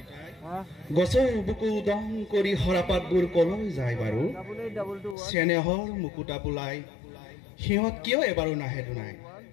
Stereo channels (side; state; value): right; drops out; at 5.2 s